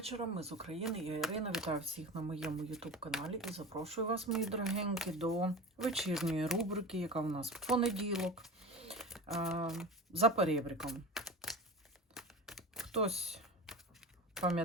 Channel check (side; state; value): both; normal; correlation 0.31